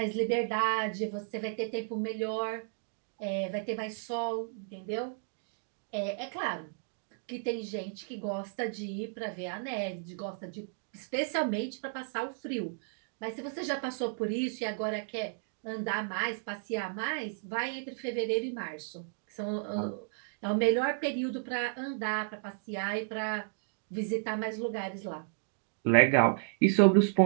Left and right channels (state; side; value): silent; left; digital silence